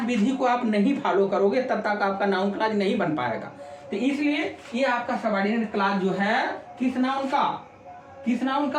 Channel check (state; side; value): identical; both; correlation 1.00